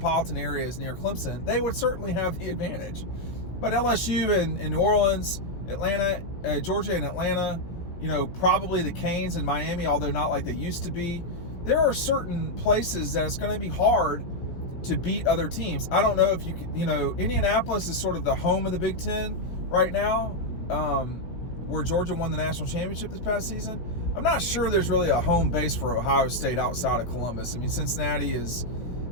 areas near Clemson, they would certainly have the advantage. But LSU and New Orleans, Atlanta, Georgia and Atlanta, probably the Canes and Miami, although not like they used to be. There are certain places that it's going to be hard to beat other teams. I don't know if you can, Indianapolis is sort of the home of the Big Ten right now, where Georgia won the national championship this past season. I'm not sure there's really a home base for Ohio State outside of Columbus. I mean, Cincinnati is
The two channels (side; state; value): right; late; 17 ms